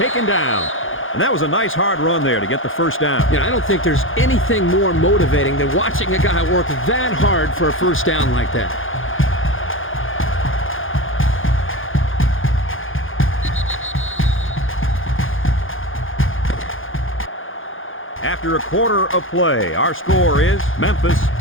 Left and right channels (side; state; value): right; late; 0.58 ms